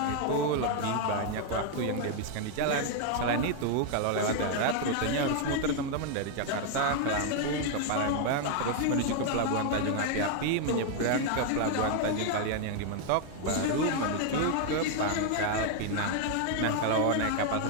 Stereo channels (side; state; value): both; different; correlation 0.00